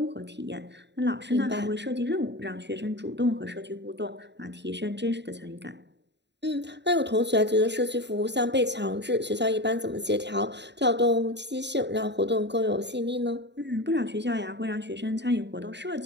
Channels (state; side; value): late; left; 0.51 ms